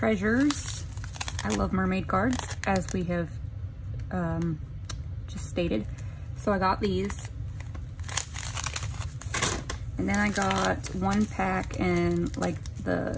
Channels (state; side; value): identical; both; correlation 1.00